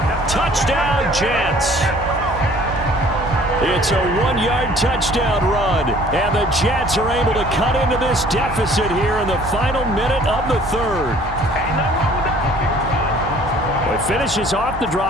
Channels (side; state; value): right; noise; hum, 12 dB below the sound